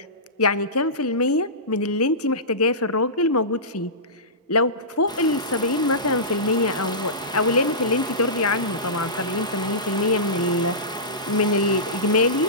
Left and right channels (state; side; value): normal; both; correlation -0.20